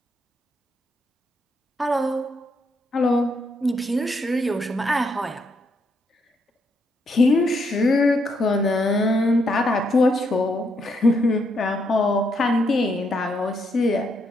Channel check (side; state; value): both; normal; correlation 0.77